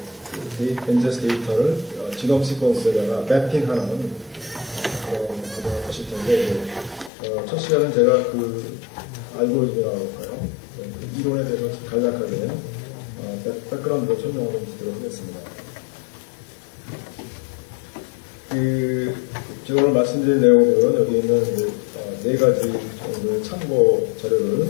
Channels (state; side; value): drops out; right; at 7.1 s